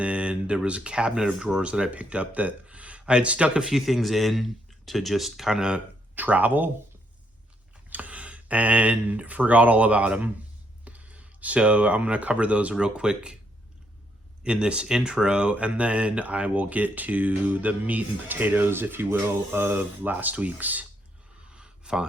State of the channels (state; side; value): normal; both; correlation 0.74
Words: then there was a cabinet of drawers that I picked up that I had stuck a few things in to just kind of travel and forgot all about them. So I'm going to cover those real quick in this intro, and then I will get to the meat and potatoes, if you will, of last week's